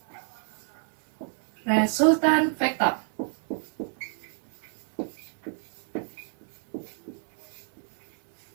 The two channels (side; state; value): left; silent; digital silence